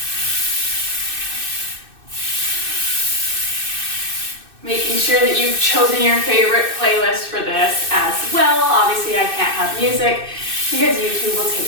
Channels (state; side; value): late; left; 2.6 ms